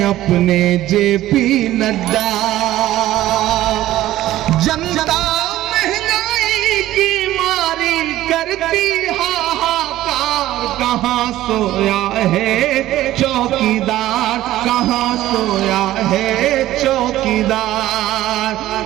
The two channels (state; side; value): quieter; left; 14.6 dB